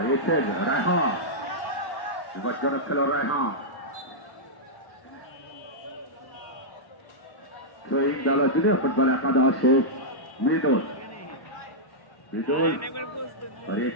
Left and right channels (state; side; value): late; right; 1.1 ms